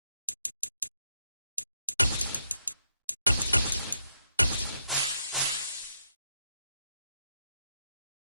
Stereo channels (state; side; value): inverted; both; correlation -0.80